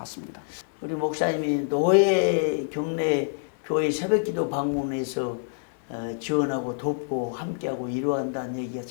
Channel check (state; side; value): silent; right; 61 dB below the other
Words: 우리 목사님이 노예 경내 교회 새벽기도 방문해서 지원하고 돕고 함께하고 이루어한다는 얘기가